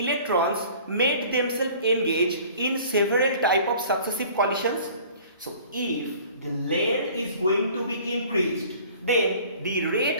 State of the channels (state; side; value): inverted; both; correlation -0.49